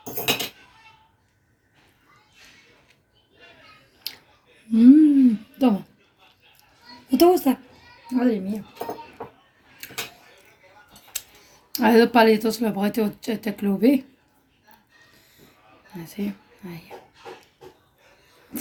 دوما وتوسع هذا المية. هذا باليتوس لو بغيتو تاكلو به. هاتي ها هي.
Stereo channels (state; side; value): identical; both; correlation 1.00